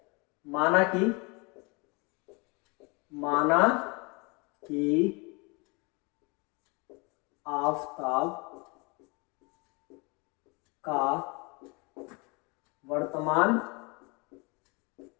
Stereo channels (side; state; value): right; quieter; 29.1 dB